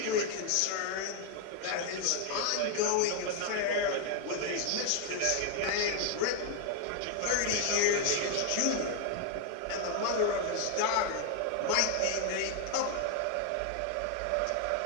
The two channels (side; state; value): both; different; correlation 0.01